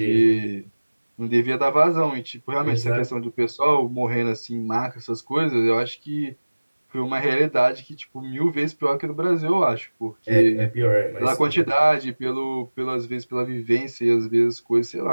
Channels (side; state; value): both; inverted; correlation -1.00